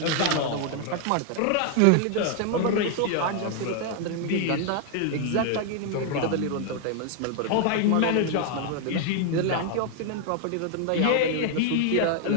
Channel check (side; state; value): both; different; correlation 0.00